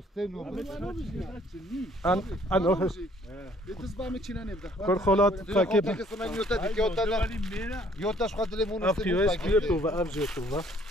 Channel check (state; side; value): normal; both; correlation 0.61